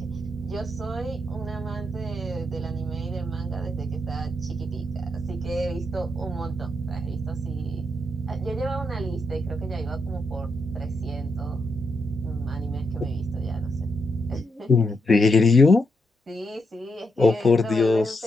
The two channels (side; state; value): both; normal; correlation 0.81